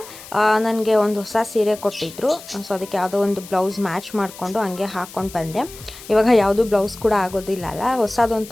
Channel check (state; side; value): noise; left; hiss, 17 dB below the sound